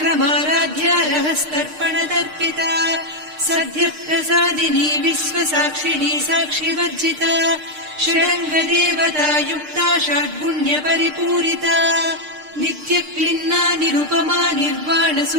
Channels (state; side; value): late; left; 6.6 ms